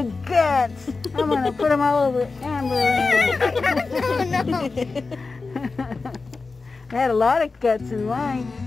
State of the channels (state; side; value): quieter; right; 4.0 dB